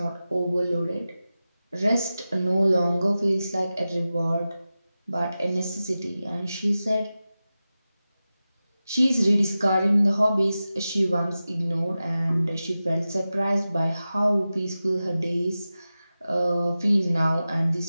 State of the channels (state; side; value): inverted; both; correlation -0.94